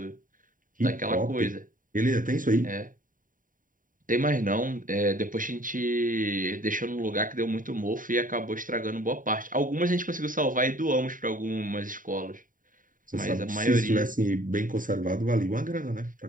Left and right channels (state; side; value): late; left; 0.39 ms